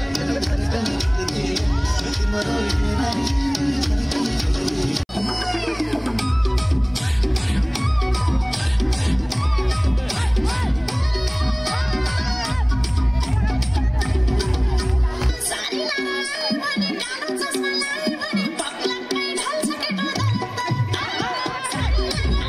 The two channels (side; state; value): both; identical; correlation 1.00